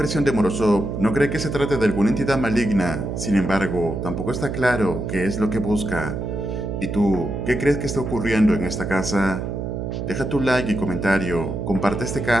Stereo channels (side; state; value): right; noise; hum, 4 dB below the sound